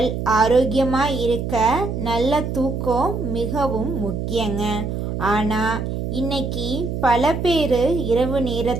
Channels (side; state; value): right; noise; hum, 3 dB below the sound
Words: ஆரோக்கியமாக இருக்க நல்ல தூக்கம் மிகவும் முக்கியங்க. ஆனால் இன்னைக்கு பல பேர் இரவு